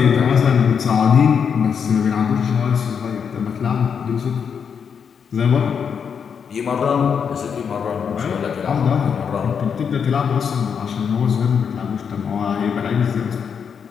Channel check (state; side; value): quieter; right; 6.9 dB